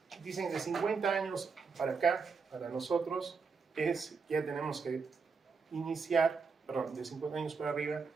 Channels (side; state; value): left; quieter; 5.1 dB